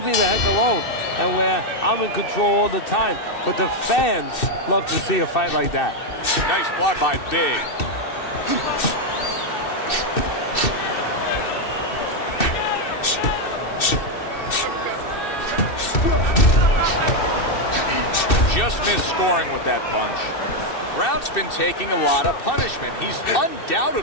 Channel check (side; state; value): right; late; 2.6 ms